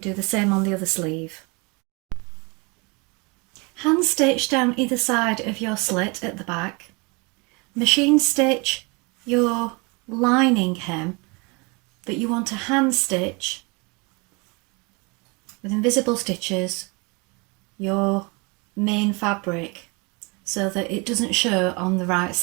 do the same on the other sleeve. Hand stitch down either side of your slit at the back. Machine stitch your lining hem that you want to hand stitch with invisible stitches your main fabric so that it doesn't show on the right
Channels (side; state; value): left; quieter; 29.1 dB